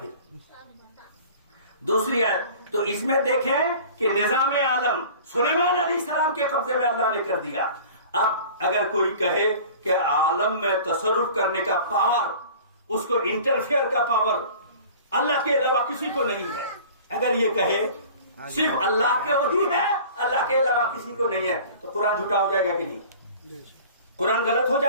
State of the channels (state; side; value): inverted; both; correlation -0.44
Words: دوسری آیت۔ تو اس میں دیکھیں کہ نظام عالم سلیمان علیہ السلام کے قبضے میں اللہ نے کر دیا۔ اب اگر کوئی کہے کہ عالم میں تصرف کرنے کا پاور، اس کو انٹرفیئر کا پاور اللہ کے علاوہ کسی کو نہیں ہے، اگر یہ کہے صرف اللہ کے وہی ہے، اللہ کے علاوہ کسی کو نہیں ہے، تو قرآن جھوٹا ہو جائے گا کہ نہیں؟ قرآن غلط ہو